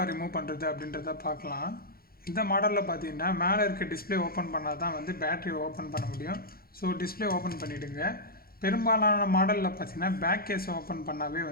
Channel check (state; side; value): late; right; 0.44 ms